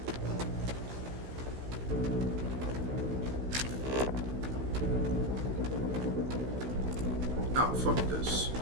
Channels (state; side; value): late; left; 16 ms